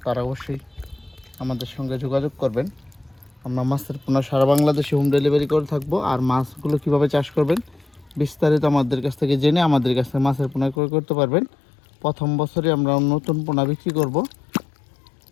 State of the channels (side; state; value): right; drops out; at 10.8 s